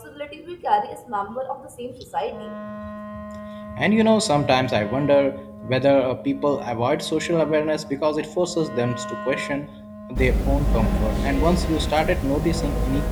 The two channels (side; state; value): both; identical; correlation 1.00